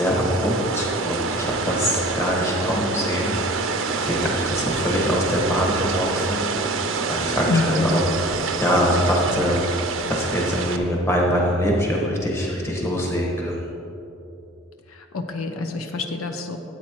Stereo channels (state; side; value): normal; both; correlation 0.44